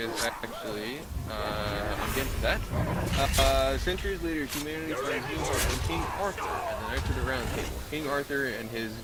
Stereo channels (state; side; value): identical; both; correlation 1.00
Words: actually, I'm getting to that. Centuries later, humanity finds new hope in King Arthur and the Knights of the Round Table. King Arthur and his